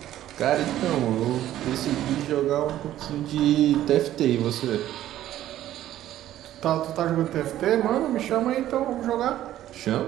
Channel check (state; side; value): quieter; left; 13.0 dB